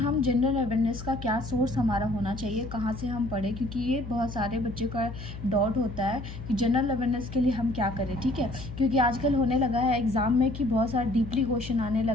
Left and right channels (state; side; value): noise; left; hum, 10 dB below the sound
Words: जनरल अवेयरनेस का क्या सोर्स हमारा होना चाहिए, कहाँ से हम पढ़ें, क्योंकि ये बहुत सारे बच्चों का डाउट होता है कि जनरल अवेयरनेस के लिए हम क्या करें। ठीक है, क्योंकि आजकल होने लगा है एग्ज़ाम में कि बहुत सारा डीपली क्वेश्चन आने